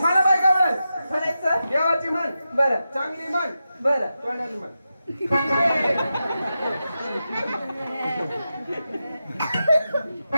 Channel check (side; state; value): both; inverted; correlation -0.90